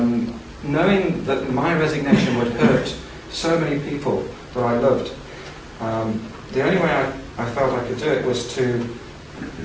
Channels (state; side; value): identical; both; correlation 1.00